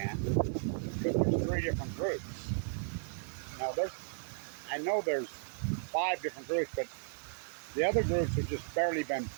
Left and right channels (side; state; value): left; silent; digital silence